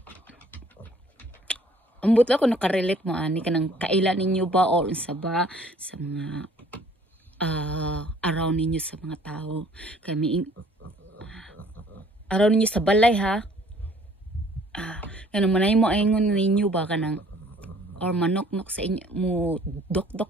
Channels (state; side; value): normal; both; correlation 0.57